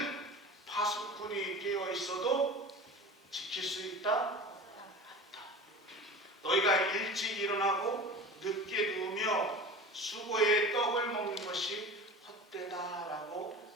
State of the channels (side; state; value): both; normal; correlation 0.35